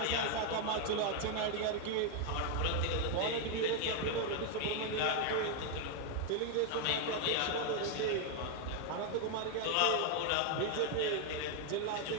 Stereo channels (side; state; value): both; different; correlation 0.01